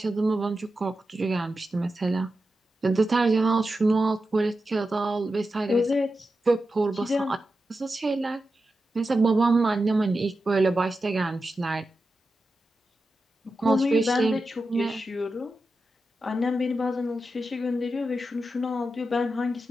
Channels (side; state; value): both; normal; correlation 0.90